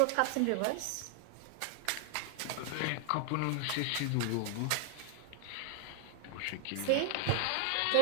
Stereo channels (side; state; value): both; different; correlation 0.00